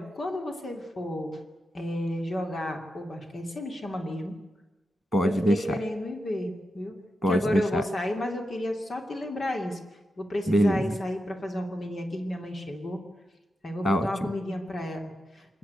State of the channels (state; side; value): normal; both; correlation 0.88